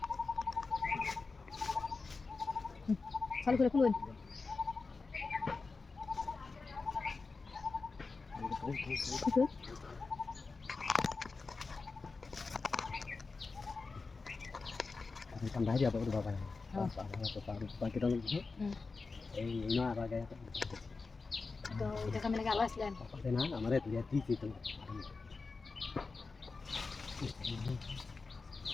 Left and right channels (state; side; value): quieter; right; 4.2 dB